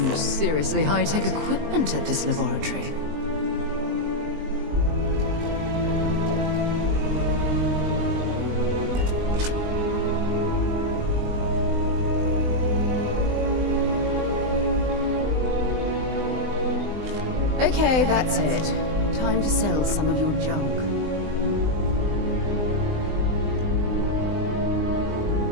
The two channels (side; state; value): left; late; 20 ms